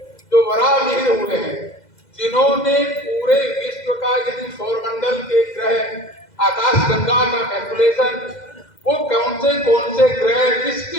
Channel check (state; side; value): late; right; 2.0 ms